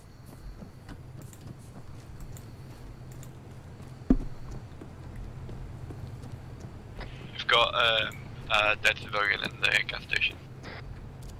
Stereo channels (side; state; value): both; identical; correlation 1.00